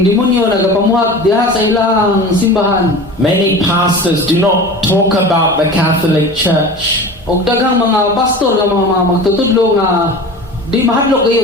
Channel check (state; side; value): normal; both; correlation 0.35